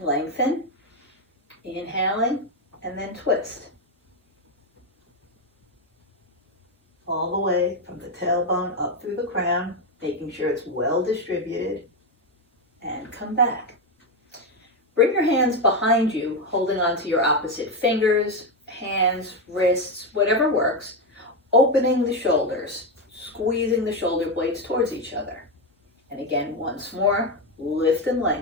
lengthen, inhaling, and then twist. All the way from the tailbone up through the crown, making sure it's well distributed, and come back. Bring your hands behind you, holding onto your opposite fingers, hands, wrists, whatever works, opening the shoulders, squeezing the shoulder blades towards each other. And again, once more, lift and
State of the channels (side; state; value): both; normal; correlation 0.09